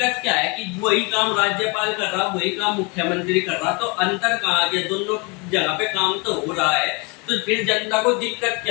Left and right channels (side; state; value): right; quieter; 30.0 dB